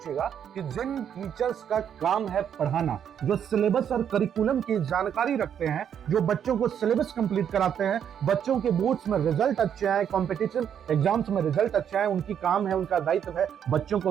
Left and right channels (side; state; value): left; quieter; 8.7 dB